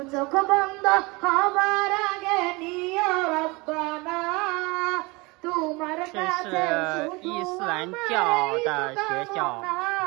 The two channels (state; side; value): quieter; left; 25.4 dB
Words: চোখ বন্ধ হবার আগে নিও রব্বানা, তোমার কাছে শুধু আমার এই কামনা।